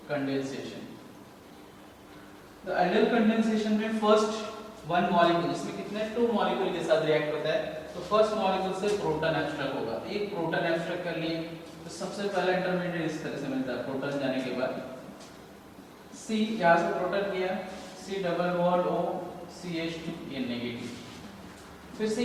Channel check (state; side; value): identical; both; correlation 1.00